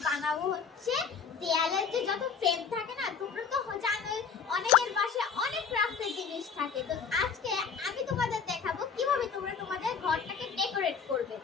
বানাবো হচ্ছে দেয়ালের যে যত ফ্রেম থাকে না, তোমরা তো জানোই অনেকের বাসায় অনেক ক্রাফটের জিনিস থাকে। তো আজকে আমি তোমাদের দেখাবো কিভাবে তোমরা তোমাদের ঘরটাকে ডেকোরেট করবে।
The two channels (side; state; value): right; quieter; 6.2 dB